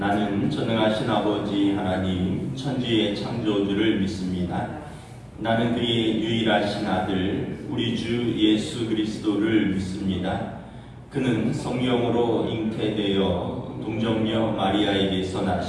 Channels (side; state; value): both; identical; correlation 1.00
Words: 전능하신 아버지 하나님 천지의 창조주를 믿습니다. 나는 그의 유일하신 아들 우리 주 예수 그리스도를 믿습니다. 그는 성령으로 잉태되어 동정녀 마리아에게서